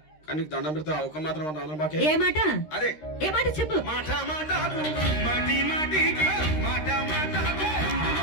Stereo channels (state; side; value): late; right; 13 ms